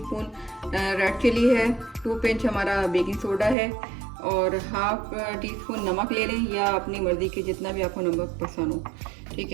red chilli है, 2 पिंच हमारा बेकिंग सोडा है, और हाफ़ टी स्पून नमक ले लें, या अपनी मर्ज़ी के जितना भी आपको नमक पसंद हो, ठीक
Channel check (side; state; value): left; drops out; at 3.6 s